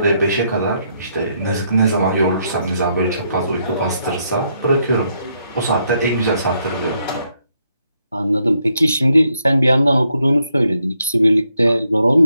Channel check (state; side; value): inverted; both; correlation -0.76